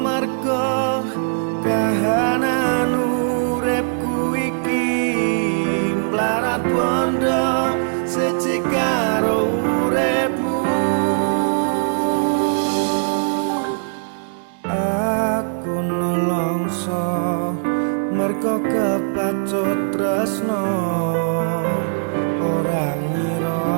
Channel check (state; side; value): silent; left; digital silence